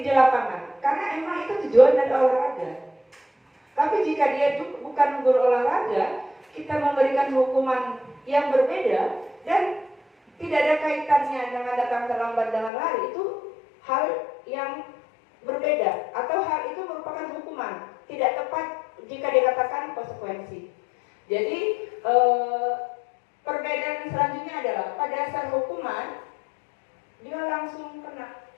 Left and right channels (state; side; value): drops out; right; at 12.7 s